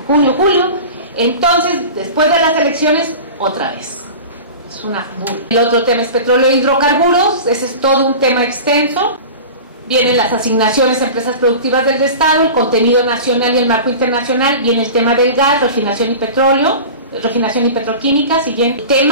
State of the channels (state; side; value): inverted; both; correlation -0.34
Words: julio. Entonces, después de las elecciones, otra vez. Es una burla. El otro tema es petróleo e hidrocarburos. Ese es todo un tema extenso. Vienen las asignaciones a empresas productivas del Estado, el contenido nacional y el marco internacional. Viene el tema del gas, refinación y petróleo, refinación y petroquímica. Siguiente